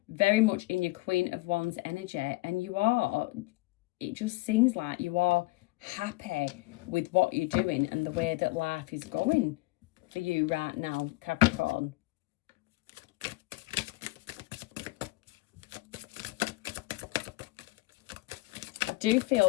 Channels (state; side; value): quieter; right; 21.8 dB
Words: very much in your Queen of Wands energy, and it just seems like you are happy with what you're doing and the way that life is going for you right now, Capricorn. I do